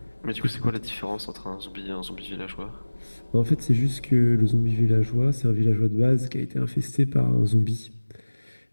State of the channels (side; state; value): both; inverted; correlation -1.00